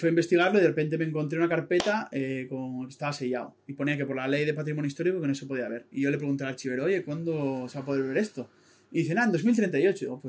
a investigarlo y de repente me encontré una carpeta que estaba sellado y ponía que por la ley de patrimonio histórico que no se podía ver y yo le pregunté al archivero, oye, ¿cuándo se va a poder ver esto? Y dice, en 2038. Digo,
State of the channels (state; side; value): identical; both; correlation 1.00